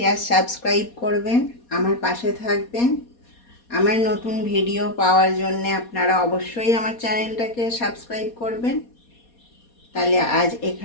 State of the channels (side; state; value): right; late; 4.2 ms